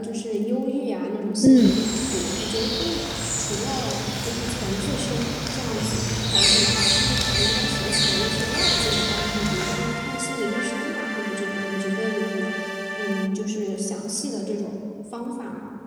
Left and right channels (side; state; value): both; identical; correlation 1.00